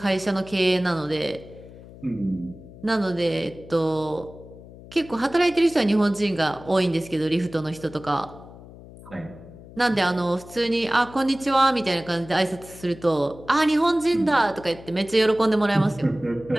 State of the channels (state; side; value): noise; left; hum, 18 dB below the sound